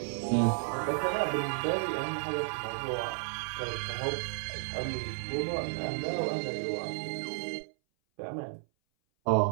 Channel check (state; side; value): silent; left; 56 dB below the other